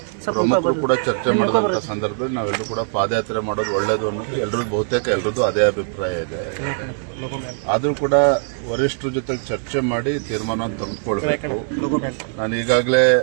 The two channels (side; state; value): left; silent; digital silence